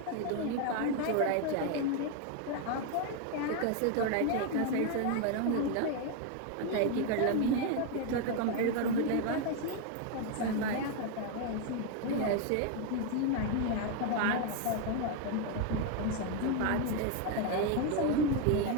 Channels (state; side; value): different; both; correlation 0.01